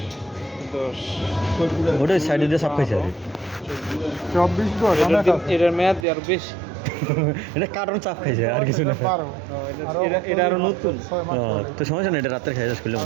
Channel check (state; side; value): drops out; left; at 6.1 s